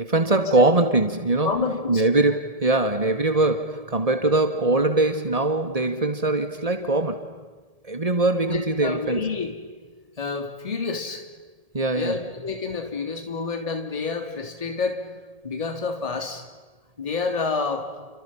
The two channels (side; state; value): left; late; 1.7 ms